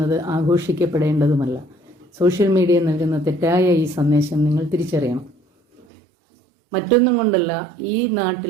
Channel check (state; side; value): drops out; left; at 5.9 s